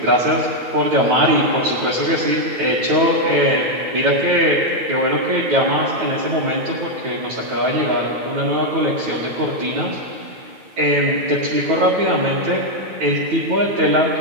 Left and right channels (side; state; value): left; late; 9.2 ms